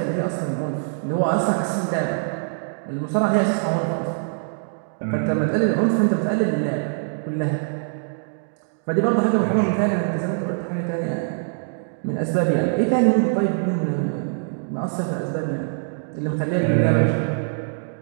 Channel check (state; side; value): silent; left; digital silence